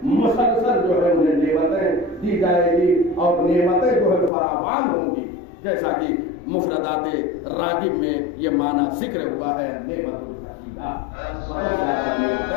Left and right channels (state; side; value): drops out; right; at 4.3 s